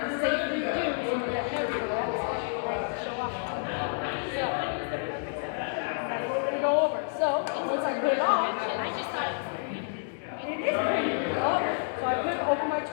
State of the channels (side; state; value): right; silent; digital silence